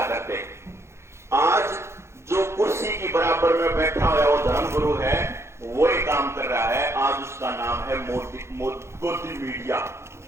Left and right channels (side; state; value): left; late; 0.13 ms